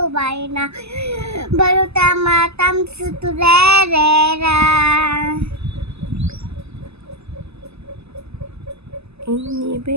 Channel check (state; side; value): late; left; 0.79 ms